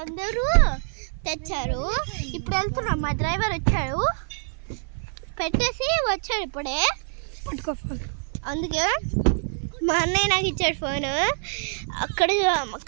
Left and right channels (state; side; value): silent; left; 56 dB below the other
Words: అందరూ తెచ్చారు. ఇప్పుడు వెళ్తున్నాం, మా డ్రైవర్ వచ్చాడు, పెట్టేసి వచ్చాడు ఇప్పుడే. అందుకే మా అన్నయ్య నాకు ఇచ్చాడు ఫోను.